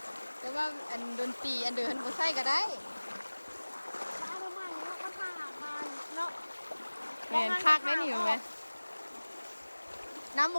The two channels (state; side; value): inverted; both; correlation -1.00